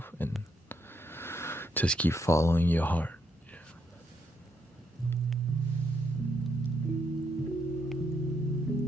and just keep following your heart.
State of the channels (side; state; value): both; normal; correlation 0.76